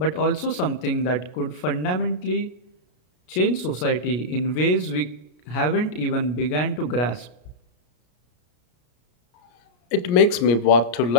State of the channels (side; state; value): right; late; 33 ms